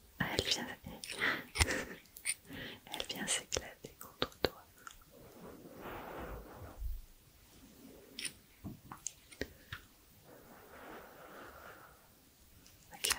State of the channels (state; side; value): identical; both; correlation 1.00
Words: Ah, elle vient s'éclater contre toi.